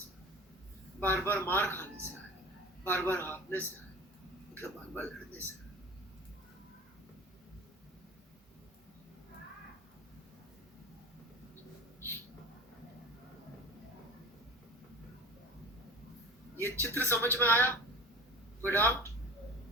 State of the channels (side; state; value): both; normal; correlation 0.38